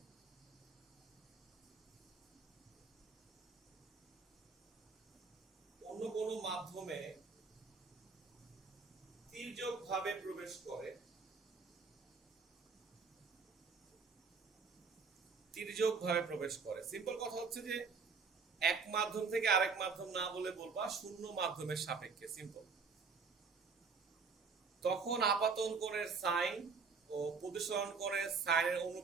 অন্য কোনো মাধ্যমে তির্যকভাবে প্রবেশ করে, সিম্পল কথা হচ্ছে যে এক মাধ্যম থেকে আরেক মাধ্যম না বলে বলবা শূন্য মাধ্যমের সাপেক্ষে, সিম্পল। তখন আপাতন কোণের সাইন ও প্রতিসরণ কোণের সাইনের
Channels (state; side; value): quieter; left; 5.1 dB